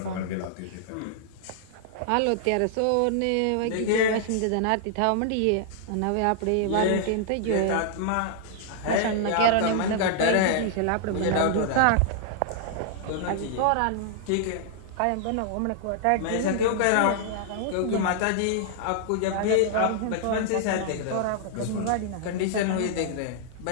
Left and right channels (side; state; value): both; different; correlation -0.01